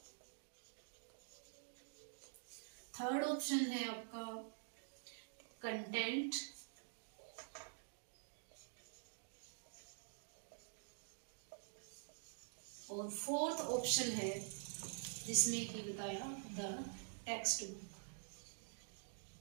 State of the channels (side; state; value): left; silent; digital silence